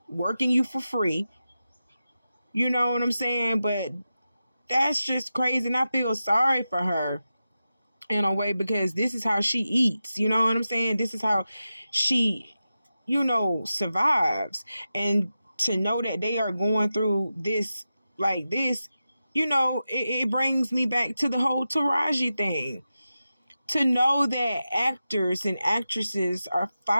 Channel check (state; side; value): inverted; both; correlation -0.92